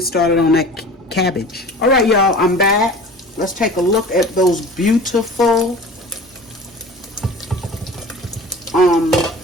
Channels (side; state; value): both; normal; correlation 0.40